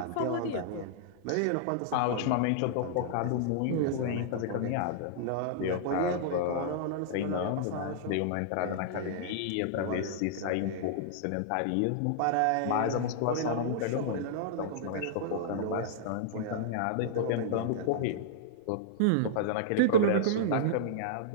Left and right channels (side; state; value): both; different; correlation -0.02